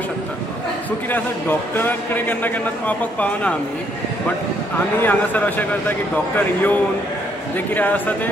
शकता. सो कितें आसा डॉक्टरा कडेन केन्ना केन्ना पावपाक पावना आमी, बट आमी हांगासर अशें करता की डॉक्टर येवन जे कितें आसा ते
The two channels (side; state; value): both; normal; correlation 0.70